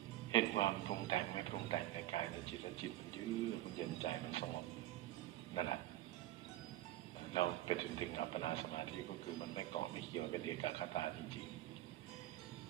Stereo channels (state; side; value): quieter; left; 15.0 dB